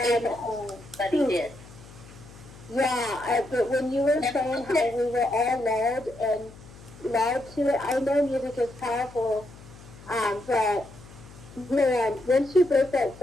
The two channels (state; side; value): noise; left; hum, 19 dB below the sound